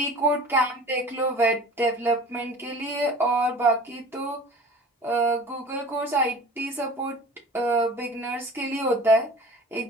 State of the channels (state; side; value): normal; both; correlation 0.42